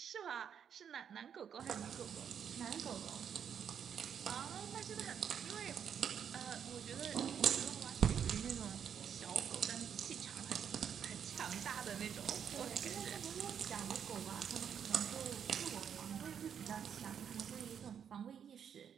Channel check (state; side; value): quieter; left; 8.0 dB